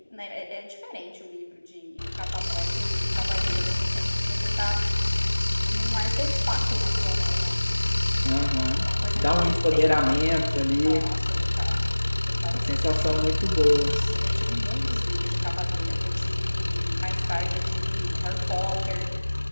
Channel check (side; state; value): both; inverted; correlation -1.00